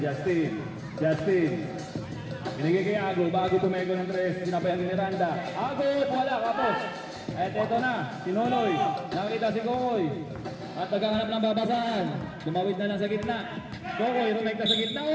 Binigay kay Ago, bago tumego ng 3, sinabayan ni Miranda. Ago, wala, kapos. At eto na, si Nonoy. Nakita si Kokoy. At naghahanap ng babasahan. Tumawid na lang sa gitna. Kokoy, rumekta sa gitna.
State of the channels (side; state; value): both; identical; correlation 1.00